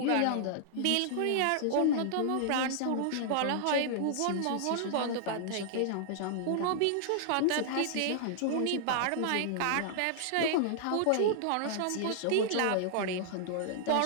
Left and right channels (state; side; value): different; both; correlation -0.01